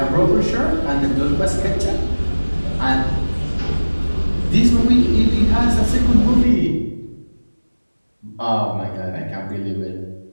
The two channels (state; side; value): inverted; both; correlation -1.00